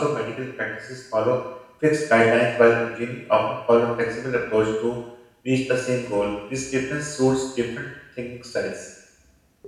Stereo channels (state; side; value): identical; both; correlation 1.00